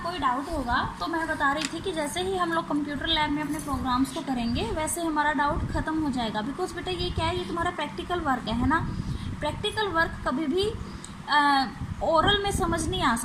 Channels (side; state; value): both; identical; correlation 1.00